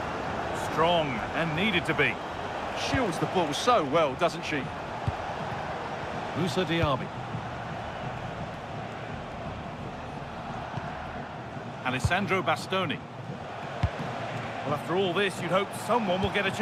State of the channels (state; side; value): identical; both; correlation 1.00